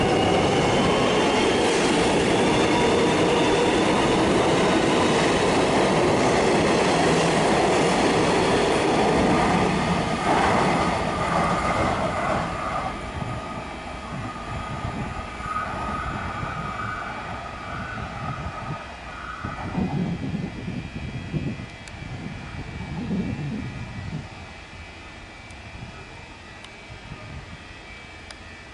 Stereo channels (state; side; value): identical; both; correlation 1.00